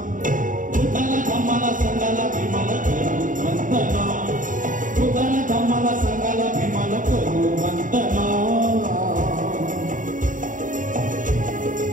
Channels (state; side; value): late; left; 0.38 ms